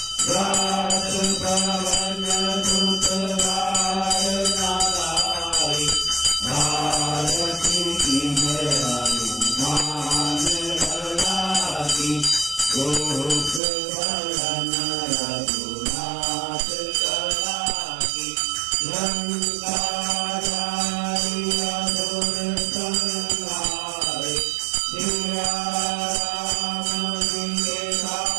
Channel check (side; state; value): left; drops out; at 13.6 s